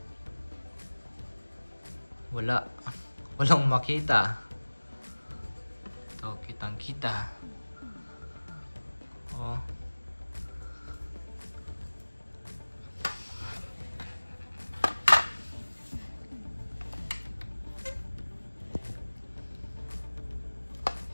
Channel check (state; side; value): inverted; both; correlation -1.00